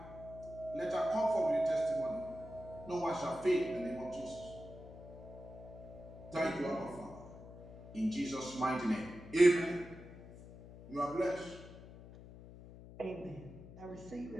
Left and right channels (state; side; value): noise; left; hum, 16 dB below the sound